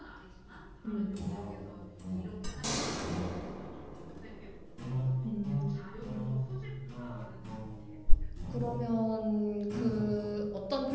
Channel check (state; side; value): identical; both; correlation 1.00